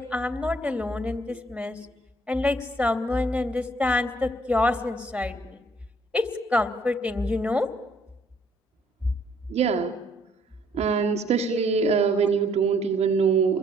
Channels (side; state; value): both; normal; correlation 0.65